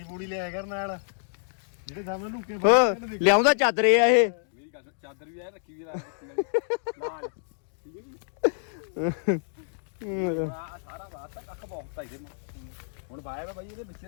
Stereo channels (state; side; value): silent; right; digital silence